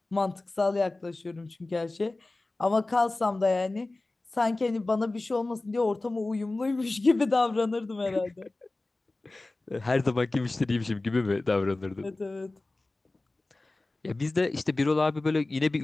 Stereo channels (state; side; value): quieter; right; 3.0 dB